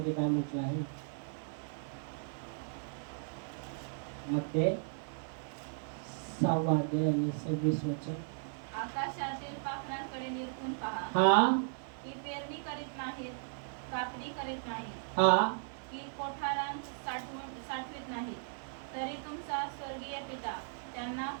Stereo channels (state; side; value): silent; left; digital silence